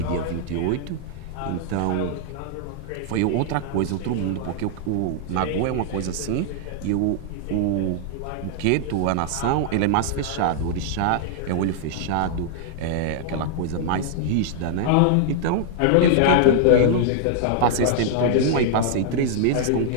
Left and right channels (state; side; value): different; both; correlation -0.01